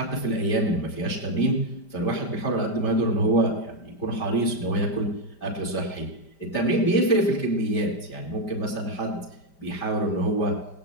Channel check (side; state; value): right; late; 5.1 ms